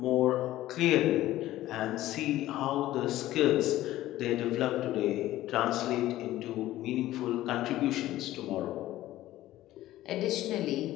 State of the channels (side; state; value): right; quieter; 15.0 dB